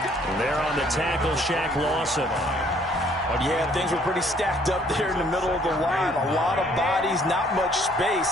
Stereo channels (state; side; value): normal; both; correlation 0.62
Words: And there on the tackle, Shaq Lawson. Yeah, things were pretty stacked up there in the middle of the line. A lot of bodies, not much space.